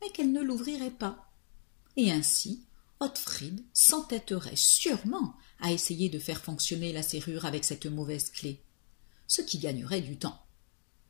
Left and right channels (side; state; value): right; silent; digital silence